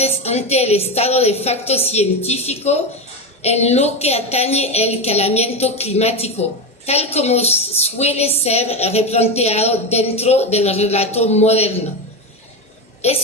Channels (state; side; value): normal; both; correlation 0.15